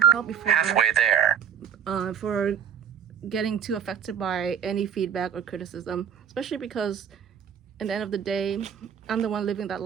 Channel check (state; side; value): quieter; left; 8.1 dB